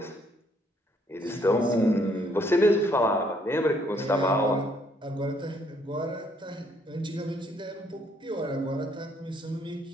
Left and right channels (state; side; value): normal; both; correlation 0.68